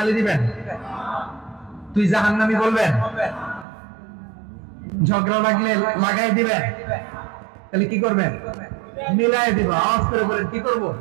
দিবেন, তুই জাহান্নামী বলবেন, ঝগড়া লাগলে লাগাই দিবেন, তাহলে কি করবেন? মিলাই দিব। আওয়াজ করে বলেন কি করব?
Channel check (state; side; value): drops out; left; at 3.7 s